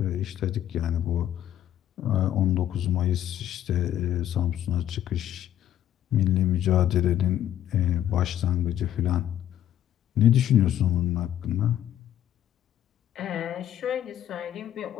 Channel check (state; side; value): quieter; right; 11.4 dB